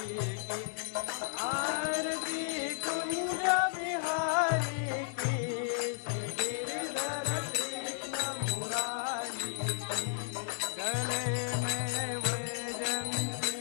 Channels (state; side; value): silent; right; 55 dB below the other